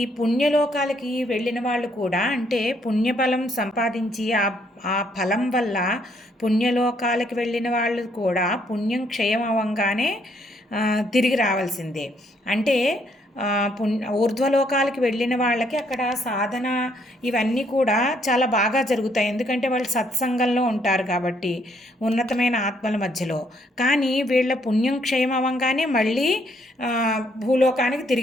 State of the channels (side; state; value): both; normal; correlation 0.70